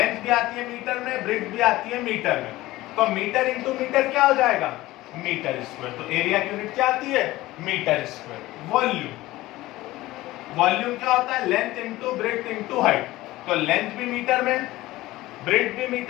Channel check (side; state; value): right; quieter; 17.7 dB